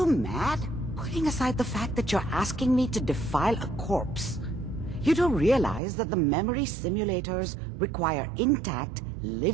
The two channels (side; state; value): left; drops out; at 5.8 s